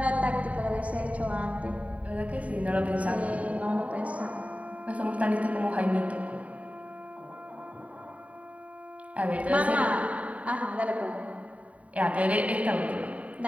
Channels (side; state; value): left; late; 0.068 ms